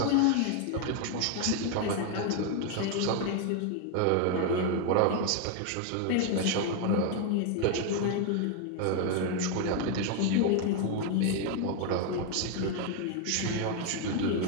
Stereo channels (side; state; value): both; different; correlation 0.01